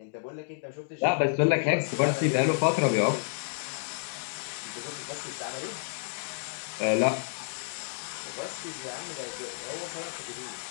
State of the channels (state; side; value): silent; right; digital silence